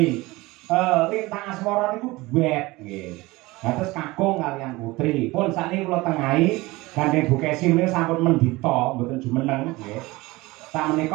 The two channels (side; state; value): left; quieter; 21.1 dB